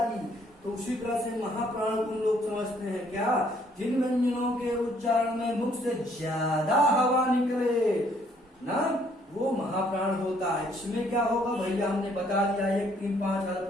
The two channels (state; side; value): normal; both; correlation 0.65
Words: तो उसी तरह से महाप्राण को लोग समझते हैं क्या? जिन व्यंजनों के उच्चारण में मुख से ज्यादा हवा निकले ना, वो महाप्राण होता है। इसमें क्या होगा भैया? हमने बता दिया 1, 3, 5 अल्प